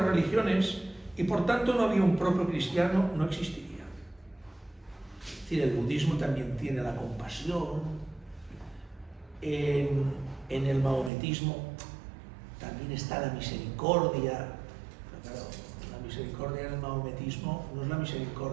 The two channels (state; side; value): drops out; left; at 11.1 s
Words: religiones y por tanto no había un propio cristiano, no existiría. Es decir, el budismo también tiene la compasión, en el maometismo también está la misericordia. Pero claro, la misericordia en el maometismo no es la